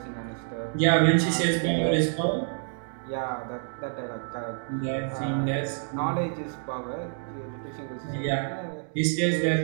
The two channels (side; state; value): left; silent; 59 dB below the other